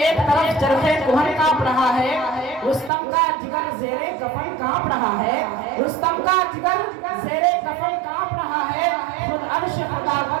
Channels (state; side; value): drops out; left; at 2.9 s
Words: طرف چرخے کوہن کانپ رہا ہے, رستم کا جگر زیر کفن کانپ رہا ہے, رستم کا جگر زیر کفن کانپ رہا ہے. خود عرش